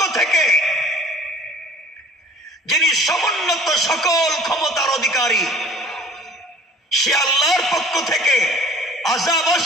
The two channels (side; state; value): both; normal; correlation 0.49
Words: থেকে, যিনি সমুন্নত সকল ক্ষমতার অধিকারী। সে আল্লাহর পক্ষ থেকে আযাব